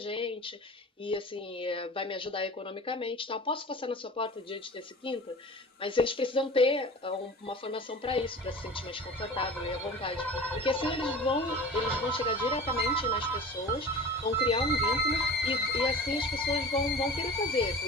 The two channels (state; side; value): normal; both; correlation 0.37